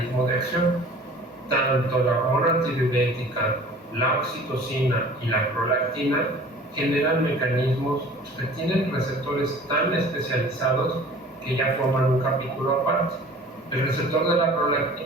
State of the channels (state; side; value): normal; both; correlation 0.46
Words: de acción. Tanto la hormona antidiurética, la oxitocina y la prolactina generan mecanismos que tienen receptores tan especializados que ya forman un capítulo aparte. El receptor de la